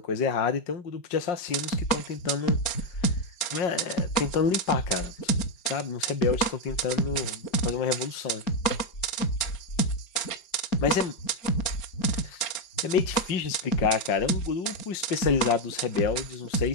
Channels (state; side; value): late; right; 4.4 ms